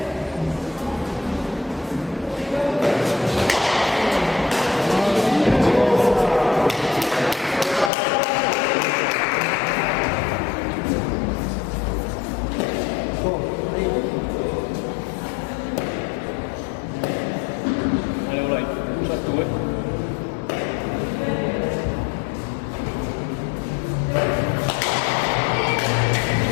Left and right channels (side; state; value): right; drops out; at 7.9 s